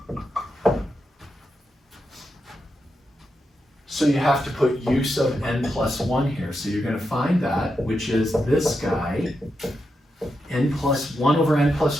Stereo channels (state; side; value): normal; both; correlation 0.86